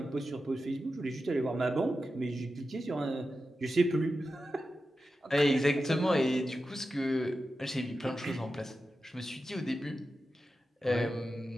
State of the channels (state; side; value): normal; both; correlation 0.91